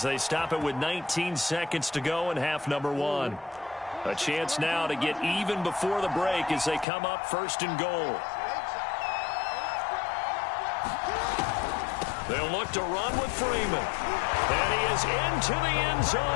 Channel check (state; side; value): drops out; right; at 6.9 s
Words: they stop it with 19 seconds to go in half number one. A chance now to get even before the break as they come up 1st and goal. They'll look to run with Freeman. And he is into the end